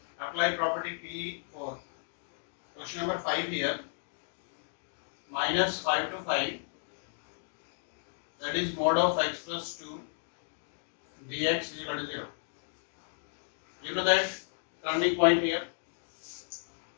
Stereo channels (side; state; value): right; silent; digital silence